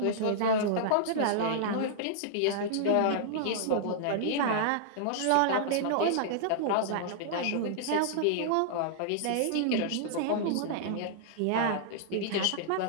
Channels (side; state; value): both; different; correlation -0.01